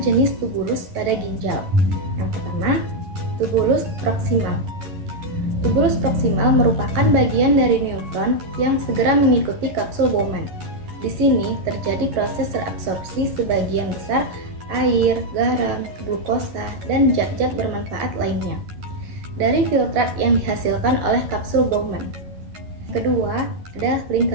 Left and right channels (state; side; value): late; left; 11 ms